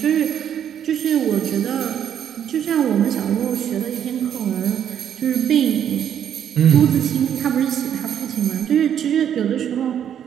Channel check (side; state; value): left; quieter; 9.3 dB